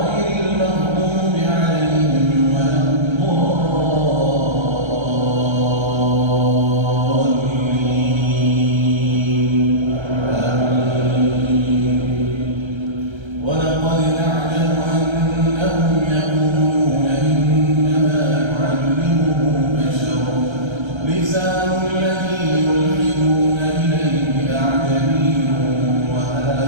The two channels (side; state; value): left; late; 1.3 ms